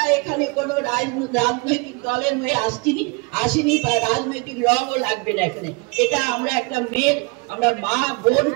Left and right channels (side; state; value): left; quieter; 28.1 dB